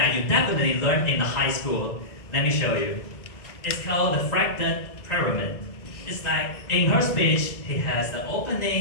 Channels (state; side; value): late; right; 2.0 ms